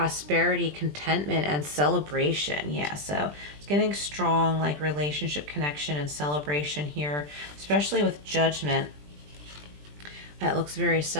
contentment, and celebration. Yeah, so it's getting strong, like relationship connection and celebration here, especially with Judgment. It looks very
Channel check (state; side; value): late; left; 20 ms